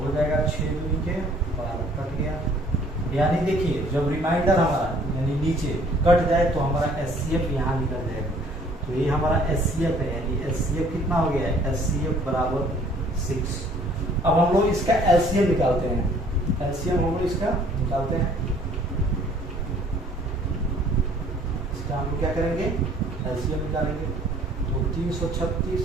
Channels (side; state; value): both; normal; correlation 0.57